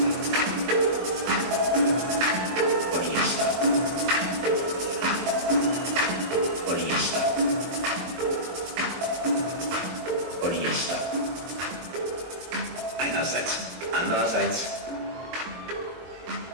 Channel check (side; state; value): left; late; 23 ms